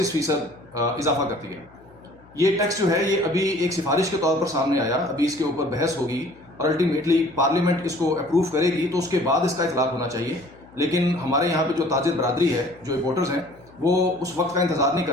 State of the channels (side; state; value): left; noise; hum, 26 dB below the sound